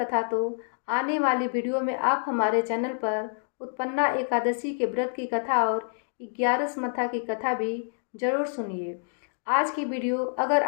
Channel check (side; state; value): right; silent; digital silence